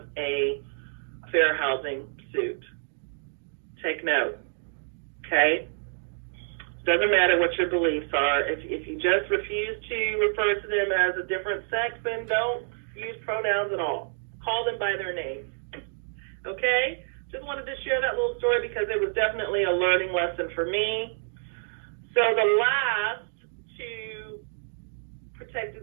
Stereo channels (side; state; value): left; silent; digital silence